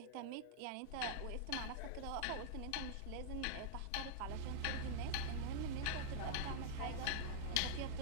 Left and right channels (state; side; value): different; both; correlation -0.01